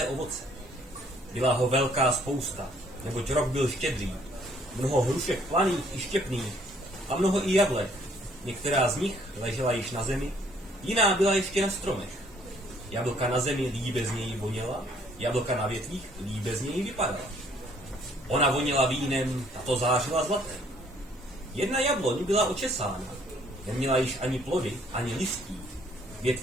ovoce. Byla ho velká spousta, neboť rok byl štědrý, mnoho hrušek planých i štěpných a mnoho i jablek. Některá z nich ležela již na zemi, jiná byla ještě na stromech. Jablka na zemi líbe z něj voněla, jablka na větvích líbe z něj vypadala. Ona voněla vínem, tato zářila zlatem. Jedna jabloň byla očesána, neměla již ani plody, ani listí.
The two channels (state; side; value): normal; both; correlation 0.63